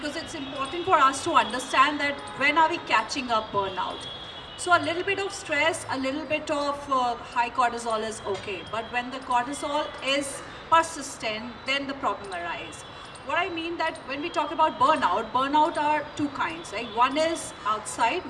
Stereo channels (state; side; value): identical; both; correlation 1.00